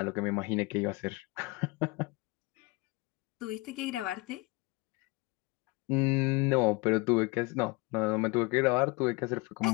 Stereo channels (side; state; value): right; quieter; 24.5 dB